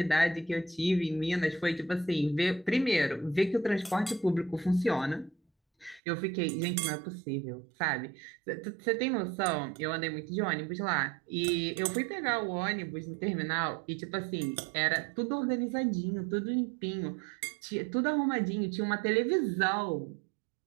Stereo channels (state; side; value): drops out; left; at 6.0 s